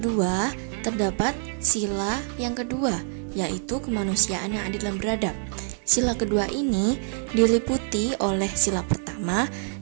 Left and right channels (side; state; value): left; silent; 61 dB below the other